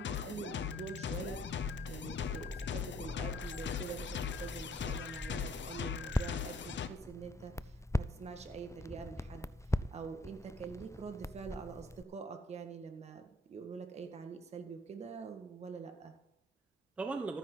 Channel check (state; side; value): normal; both; correlation 0.63